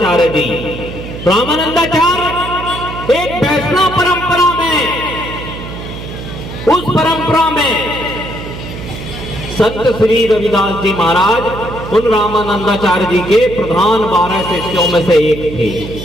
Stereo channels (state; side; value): noise; right; hum, 10 dB below the sound